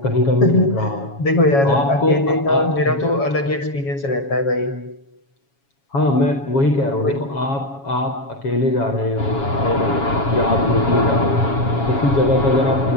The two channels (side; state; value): right; late; 7.2 ms